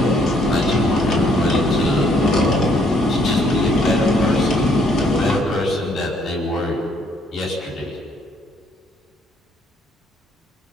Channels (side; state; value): both; normal; correlation 0.67